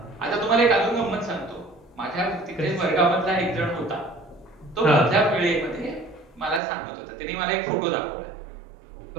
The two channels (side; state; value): left; drops out; at 6.6 s